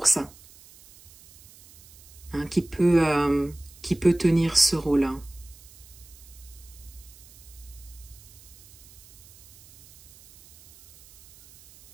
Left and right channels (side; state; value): right; noise; hiss, 23 dB below the sound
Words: ça, hein, qui peut tenir ce rôle-là.